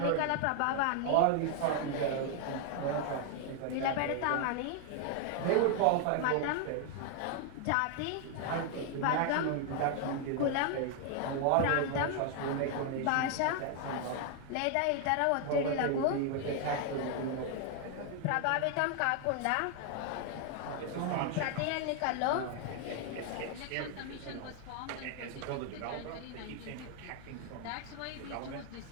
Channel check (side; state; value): both; different; correlation 0.00